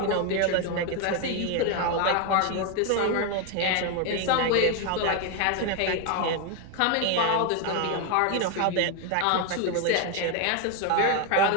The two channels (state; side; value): different; both; correlation 0.01